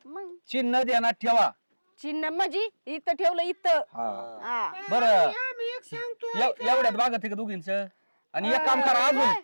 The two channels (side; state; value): both; inverted; correlation -1.00